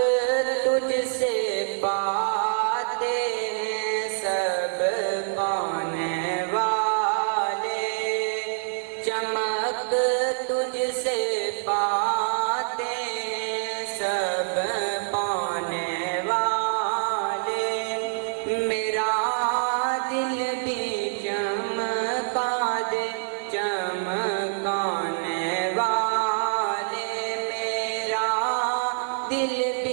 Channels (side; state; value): left; silent; digital silence